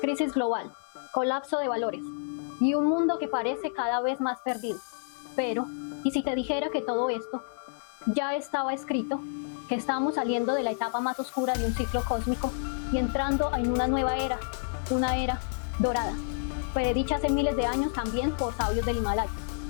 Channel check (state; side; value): silent; right; digital silence